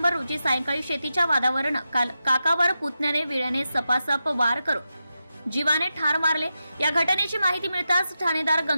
रोजी सायंकाळी शेतीच्या वादावरून काकावर पुतण्याने विळ्याने सपासप वार करून जीवाने ठार मारले. या घटनेची माहिती मिळताच ठाणेदार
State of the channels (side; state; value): both; inverted; correlation -0.90